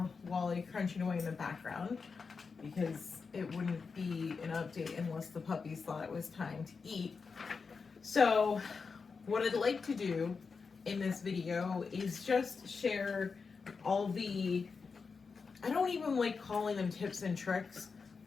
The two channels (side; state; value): right; quieter; 5.0 dB